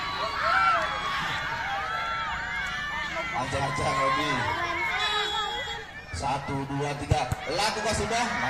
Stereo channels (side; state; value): both; identical; correlation 1.00